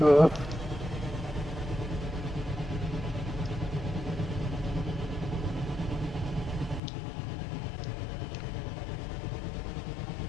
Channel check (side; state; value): right; drops out; at 6.8 s